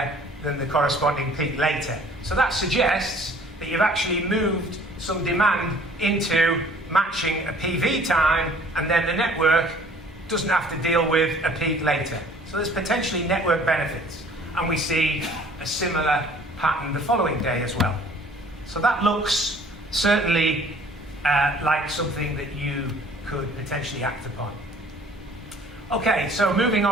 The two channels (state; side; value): normal; both; correlation 0.54